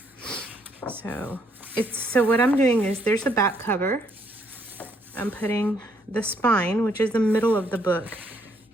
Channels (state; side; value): normal; both; correlation 0.70